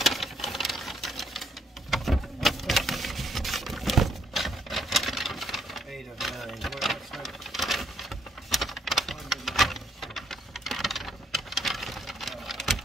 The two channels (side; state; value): both; normal; correlation 0.70